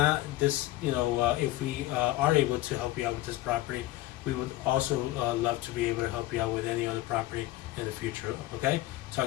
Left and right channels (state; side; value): quieter; right; 16.6 dB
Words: this. If we are able to help you out with this property, we would also love to be able to help you out with any other property in the future. Okay,